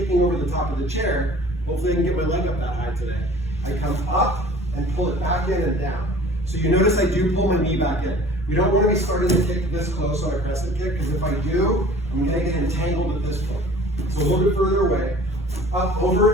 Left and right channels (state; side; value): normal; both; correlation 0.48